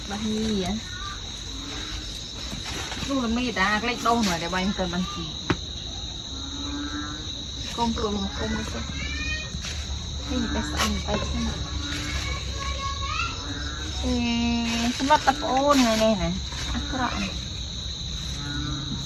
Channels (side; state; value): both; identical; correlation 1.00